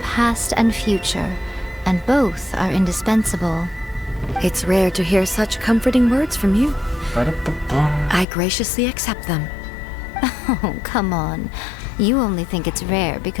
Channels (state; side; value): drops out; right; at 8.2 s